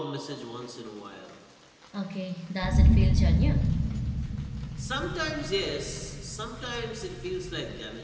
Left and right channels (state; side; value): identical; both; correlation 1.00